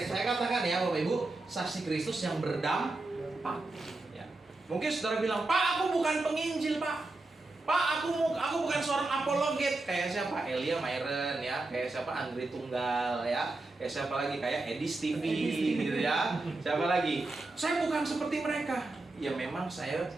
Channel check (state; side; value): quieter; left; 3.1 dB